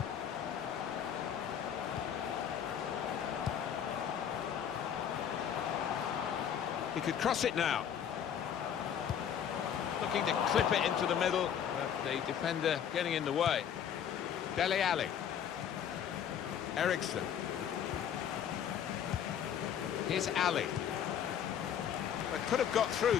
He could cross it now. Looking to clip it into the middle, but the defender getting in the way. Dele Alli. Eriksson. Here's Ali. But could have got through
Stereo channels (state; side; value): quieter; right; 8.8 dB